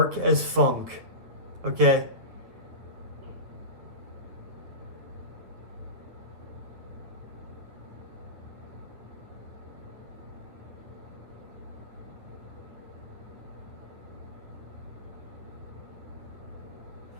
as funk. Okay?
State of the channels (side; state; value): left; late; 9.1 ms